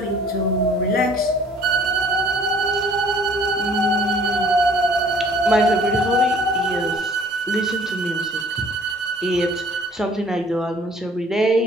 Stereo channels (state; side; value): normal; both; correlation 0.54